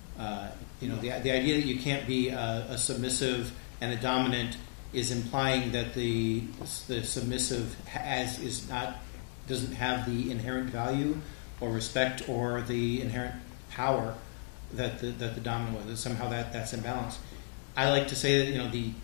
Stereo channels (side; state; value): right; silent; 55 dB below the other